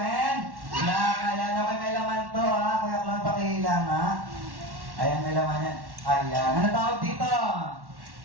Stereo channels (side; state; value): left; late; 1.1 ms